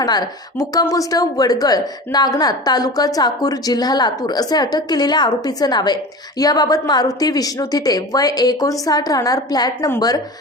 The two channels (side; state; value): both; normal; correlation 0.33